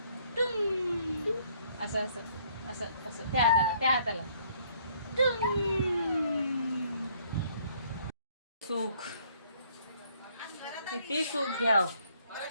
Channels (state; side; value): inverted; both; correlation -0.64